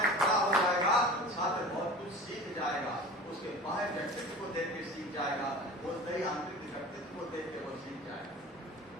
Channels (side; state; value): both; normal; correlation 0.37